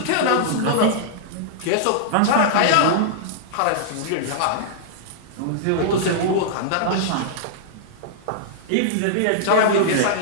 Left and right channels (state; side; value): different; both; correlation -0.02